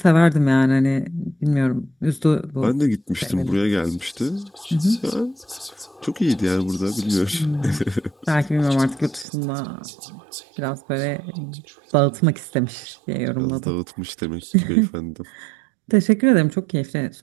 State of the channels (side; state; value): left; drops out; at 9.2 s